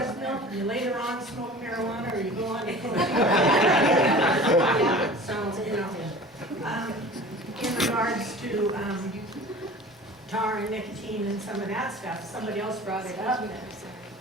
milk, and you later on smoke marijuana, or you go on to cocaine. So, you know, in regards to tar and nicotine and some of that stuff, somebody else brought it up.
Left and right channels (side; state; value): both; normal; correlation 0.40